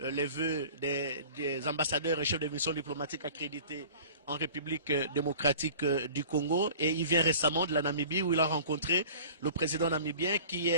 vœux des ambassadeurs et chefs de mission diplomatique accrédités en République démocratique du Congo. Et il vient récemment de la Namibie où il a rencontré le président namibien qui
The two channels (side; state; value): both; inverted; correlation -0.43